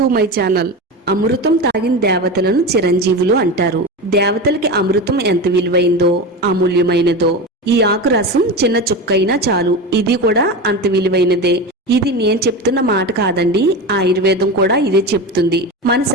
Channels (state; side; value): normal; both; correlation 0.23